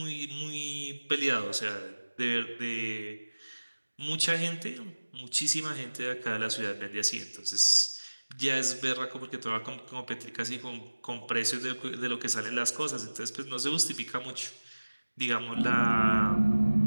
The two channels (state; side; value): inverted; both; correlation -1.00